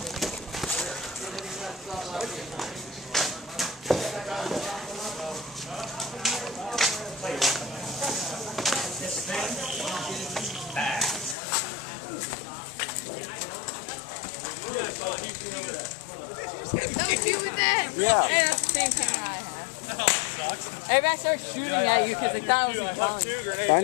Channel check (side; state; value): right; drops out; at 11.4 s